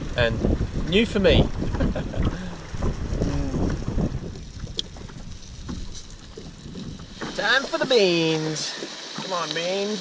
and new for me. Time for the beans. Come on,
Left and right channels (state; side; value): identical; both; correlation 1.00